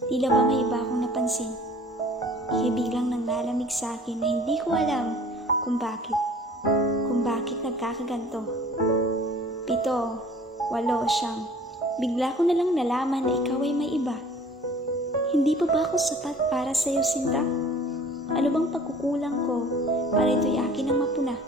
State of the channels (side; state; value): both; normal; correlation 0.49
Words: tila ba may iba akong napansin? Ika'y biglang nang lalamig sa akin na hindi ko alam kung bakit nagkakaganto. 7, 8, 9. Bigla ko na lang nalaman na ikaw ay may iba. Hindi pa ba ako sapat para sa'yo, Sinta? Ano bang pagkukulang ko para ito'y akin ang mapuna?